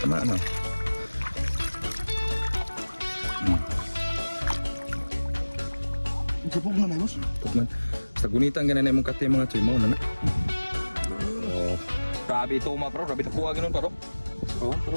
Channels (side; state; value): both; inverted; correlation -1.00